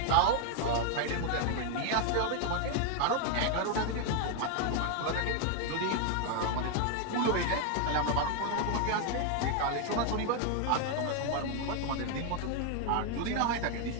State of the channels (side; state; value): both; different; correlation 0.00